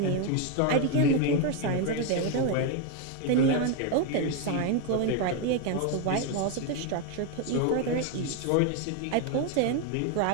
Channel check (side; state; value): both; different; correlation 0.01